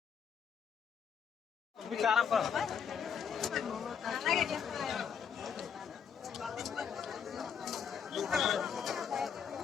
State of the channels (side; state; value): right; quieter; 7.3 dB